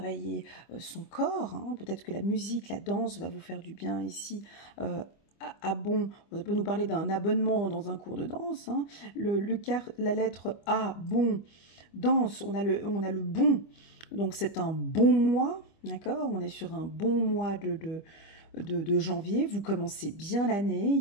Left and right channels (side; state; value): right; late; 25 ms